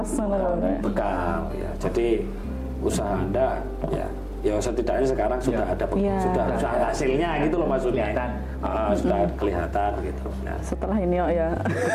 bekal ya. Jadi usaha Anda ya setidaknya sekarang sudah ada sudah hasilnya gitu loh maksudnya. Sudah kelihatan gitu. Nah, setelah ini ya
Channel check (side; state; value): both; identical; correlation 1.00